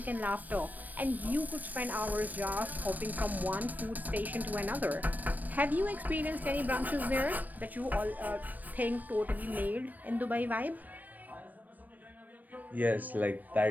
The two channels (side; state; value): left; late; 0.084 ms